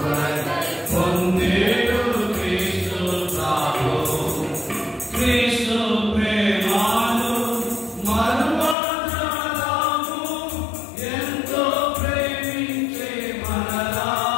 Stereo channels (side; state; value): right; drops out; at 8.8 s